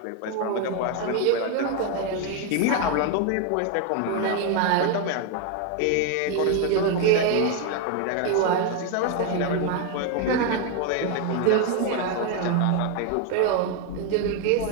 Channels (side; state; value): both; different; correlation 0.01